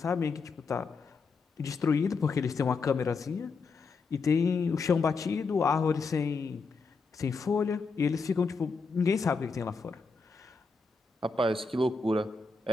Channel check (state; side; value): quieter; right; 4.4 dB